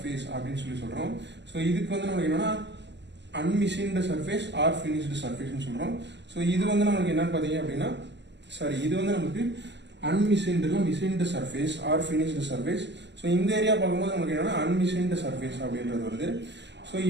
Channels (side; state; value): left; late; 0.51 ms